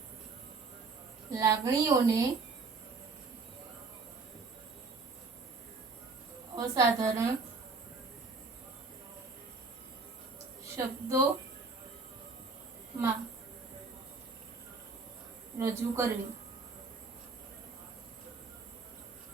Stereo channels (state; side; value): quieter; left; 4.2 dB